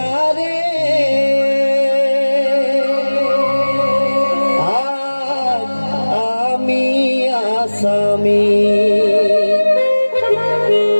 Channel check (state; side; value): inverted; both; correlation -1.00